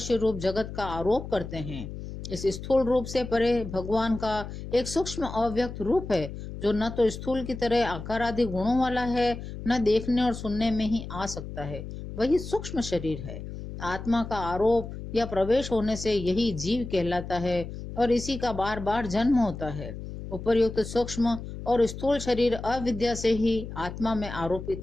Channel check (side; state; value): left; noise; hum, 10 dB below the sound